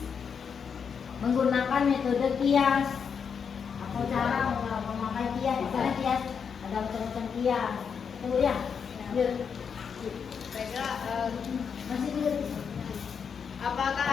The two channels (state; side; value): quieter; right; 6.6 dB